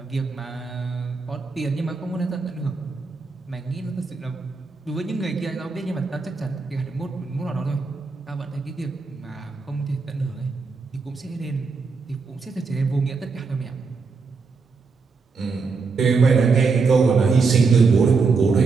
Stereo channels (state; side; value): quieter; left; 4.6 dB